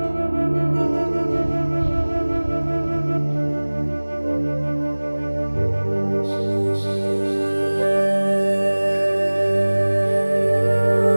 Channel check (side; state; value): both; inverted; correlation -1.00